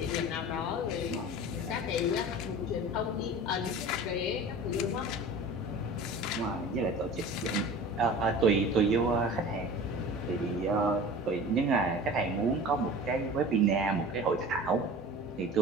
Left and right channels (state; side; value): normal; both; correlation 0.38